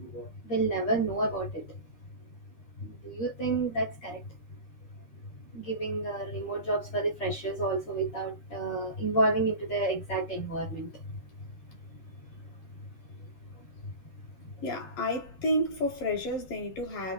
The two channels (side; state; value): right; late; 13 ms